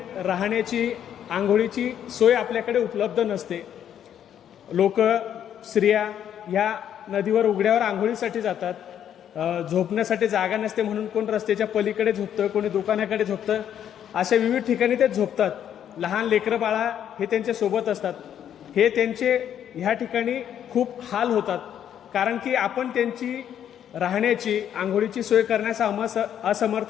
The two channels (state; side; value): quieter; right; 9.7 dB